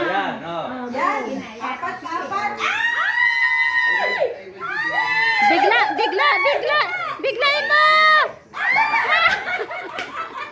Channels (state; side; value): identical; both; correlation 1.00